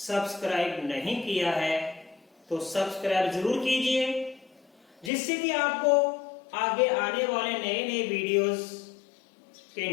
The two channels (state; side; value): drops out; right; at 5.1 s